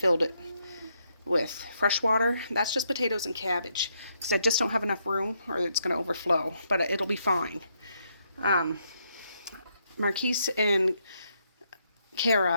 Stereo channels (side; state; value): both; inverted; correlation -0.77